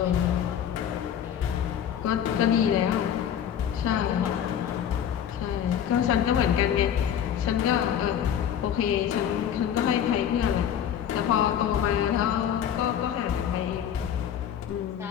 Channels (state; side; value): quieter; right; 9.3 dB